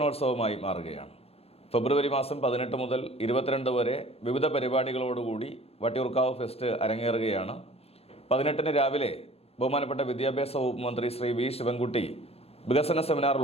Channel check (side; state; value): right; late; 0.29 ms